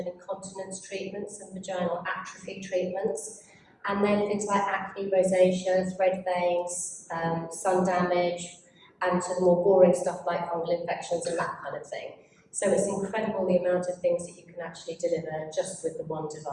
incontinence treatments and vaginal atrophy treatments. And then things like acne, rosacea, thread veins, sun damage, and to the more boring stuff like fungal infections and that kind of thing. So it's incredible the amount of things that you can actually deliver just with the one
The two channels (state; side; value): identical; both; correlation 1.00